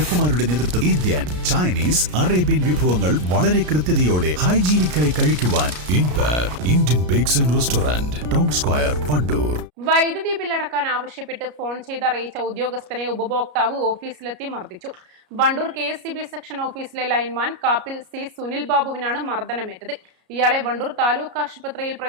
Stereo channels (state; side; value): late; left; 33 ms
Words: നേതൃത്വം ഇന്ത്യൻ, ചൈനീസ്, അറേബ്യൻ വിഭവങ്ങൾ വളരെ കൃത്യതയോടെ ഹൈജീനിക്കായി കഴിക്കുവാൻ Indian bakes and restaurant, town square, Wandoor. വൈദ്യുതി ബില്ലടക്കാൻ ആവശ്യപ്പെട്ട് ഫോൺ ചെയ്തറിയിച്ച ഉദ്യോഗസ്ഥനെ ഉപഭോക്താവ് ഓഫീസിലെത്തി മർദ്ദിച്ചു. വണ്ടൂർ KSEB സെക്ഷൻ ഓഫീസിലെ ലൈൻമാൻ കാപ്പിൽ C സുനിൽ ബാബുവിനാണ് മർദ്ദനമേറ്റത്. ഇയാളെ വണ്ടൂർ താലൂക്ക് ആശുപത്രിയിൽ